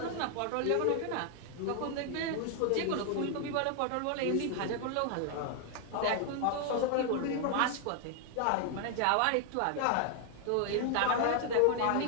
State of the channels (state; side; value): different; both; correlation 0.00